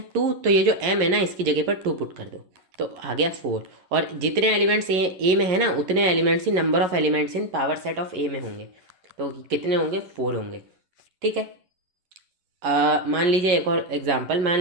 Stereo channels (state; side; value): late; left; 11 ms